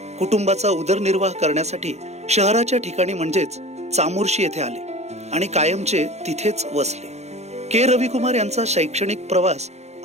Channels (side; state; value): left; late; 0.32 ms